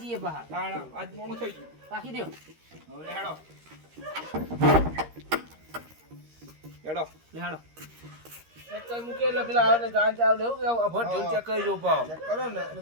જઈએ પા તાણ આજ મોડું થઈ ગયું. વાકી દેવ હવે હેડો. હેડો. લેહાડો ચેક કરી મૂકે એટલે પેલા આવે ને ગાન ચાવ લેવું કે અભર ઢોલ ચેક કરી જો પાવ. ચેક કરો ને.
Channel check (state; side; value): late; left; 13 ms